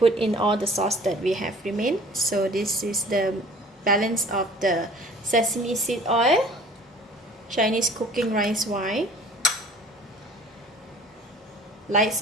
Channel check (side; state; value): both; normal; correlation 0.49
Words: in all the sauce that we have remained. So this is the balance of the sesame seed oil, Chinese cooking rice wine, light